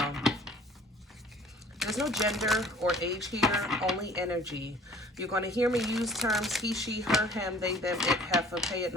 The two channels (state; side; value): normal; both; correlation 0.51